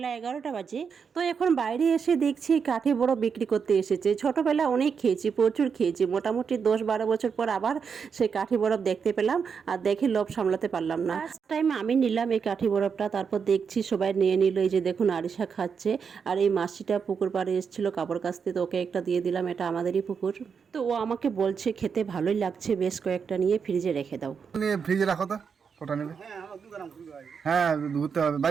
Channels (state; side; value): quieter; left; 6.3 dB